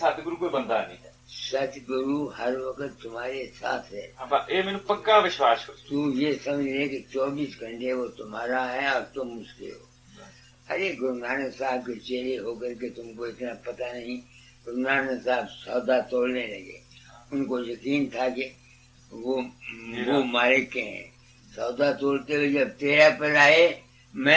ਕੋਈ ਬੰਦਾ ਨਹੀਂ ਹੈ सतगुरु हर वक्त तुम्हारे साथ है। ਆਪਾਂ ਇਹ ਮੈਨੂੰ ਪੱਕਾ ਵਿਸ਼ਵਾਸ ਹੋ तू ये समझ ले कि 24 घंटे वो तुम्हारा है और तुम उसके हो। अरे गुरु नानक साहब के चेहरे होकर के तुमको इतना पता नहीं। गुरु नानक साहब सौदा तोड़ने लगे, उनको यकीन था कि वो मालिक के हैं। सौदा तोड़ते हुए जब तेरा पर आए,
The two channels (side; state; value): both; identical; correlation 1.00